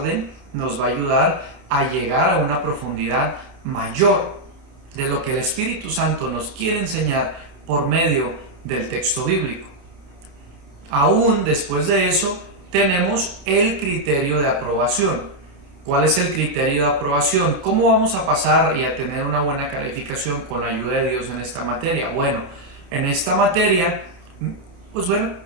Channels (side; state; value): left; late; 29 ms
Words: nos va a ayudar a llegar a una profundidad mayor de lo que el Espíritu Santo nos quiere enseñar por medio del texto bíblico. Aún después de eso tenemos el criterio de aprobación. ¿Cuál es el criterio de aprobación? ¿Cómo vamos a pasar y a tener una buena calificación con la ayuda de Dios en esta materia? Bueno, en esta materia, pues bueno,